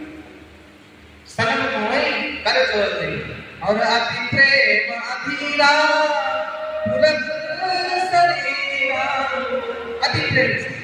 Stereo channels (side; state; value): both; identical; correlation 1.00